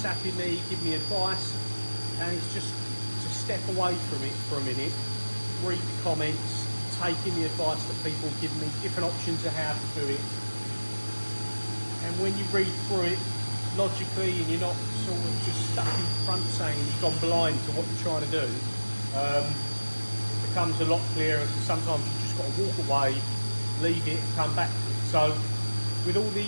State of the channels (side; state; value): both; inverted; correlation -1.00